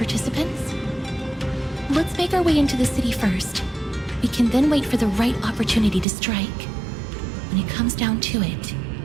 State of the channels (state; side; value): drops out; left; at 6.1 s